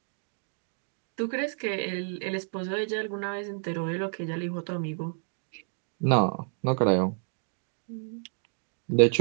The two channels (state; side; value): silent; left; digital silence